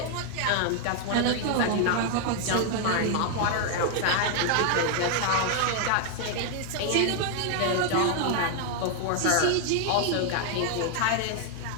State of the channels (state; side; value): different; both; correlation 0.00